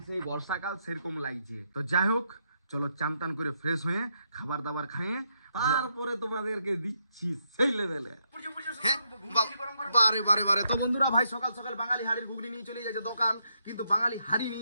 সেই বর্ষাকাল সেরকম লাগছে। তো যাই হোক, চলো চান টান করে ফ্রেশ হয়ে খাবার দাবার খাইয়ে তারপরে তোমাদেরকে দিচ্ছি সেই লেভেলে। বারে বারে বারে। তো বন্ধুরা ভাই সকাল সকাল বাঙালি হাড়ির ঘুগনি নিয়ে চলে যাচ্ছে দোকান, কিন্তু বাঙালি হাড়ি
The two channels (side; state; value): both; inverted; correlation -0.79